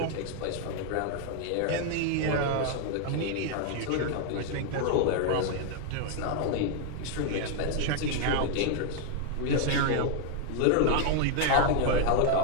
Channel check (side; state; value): both; different; correlation 0.00